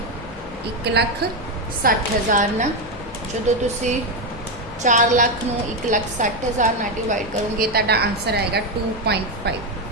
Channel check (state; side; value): normal; both; correlation 0.08